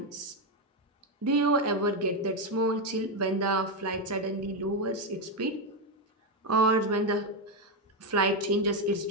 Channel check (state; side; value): normal; both; correlation 0.06